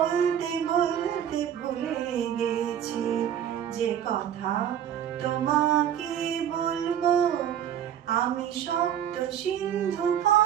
বলতে ভুলে গেছি যে কথা তোমাকে বলবো। আমি সপ্ত সিন্ধু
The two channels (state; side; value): quieter; left; 9.8 dB